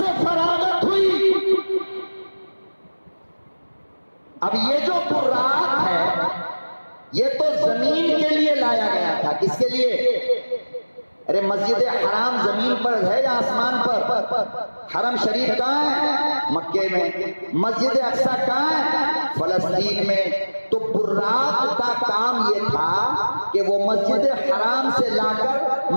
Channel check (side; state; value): both; inverted; correlation -1.00